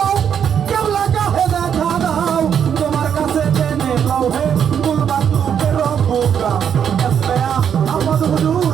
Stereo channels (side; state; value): left; quieter; 8.2 dB